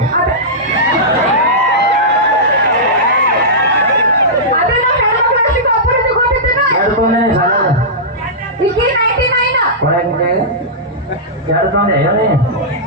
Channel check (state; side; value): normal; both; correlation -0.14